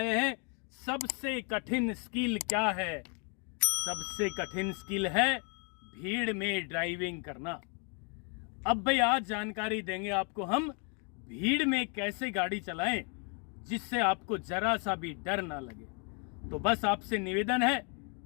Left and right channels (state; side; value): quieter; right; 37.3 dB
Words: हैं सबसे कठिन स्किल क्या है। सबसे कठिन स्किल है भीड़ में ड्राइविंग करना। अब भाई आज जानकारी देंगे आपको हम भीड़ में कैसे गाड़ी चलाएं जिससे आपको जरा सा भी डर ना लगे। तो बस आपसे निवेदन है